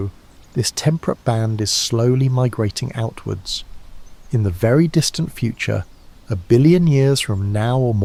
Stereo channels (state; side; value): identical; both; correlation 1.00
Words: this temperate band is slowly migrating outwards. In the very distant future, 1 billion years from now or